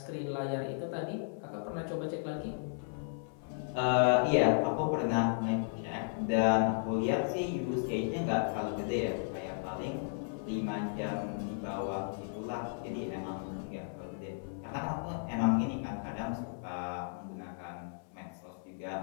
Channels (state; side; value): silent; right; 55 dB below the other